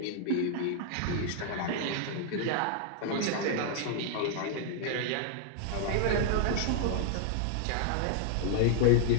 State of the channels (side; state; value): both; different; correlation 0.00